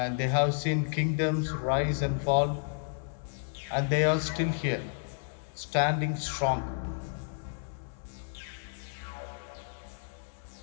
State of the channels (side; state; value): right; silent; 57 dB below the other